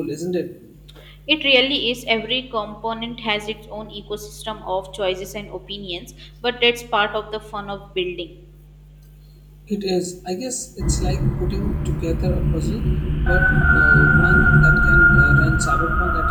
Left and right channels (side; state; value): both; identical; correlation 1.00